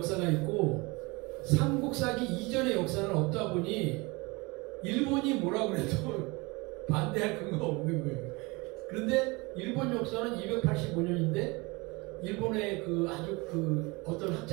있고 삼국사기 이전의 역사는 없다 보니 일본이 뭐라고 해도 반대할 근거가 없는 거예요. 그런데 일본 역사는 285년인데 일본의 그 아주 그 어떤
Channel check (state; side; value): quieter; left; 25.8 dB